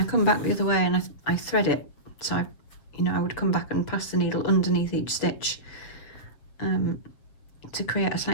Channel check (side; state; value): right; late; 7.6 ms